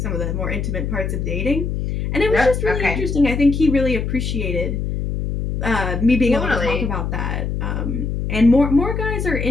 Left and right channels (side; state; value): left; noise; hum, 2 dB below the sound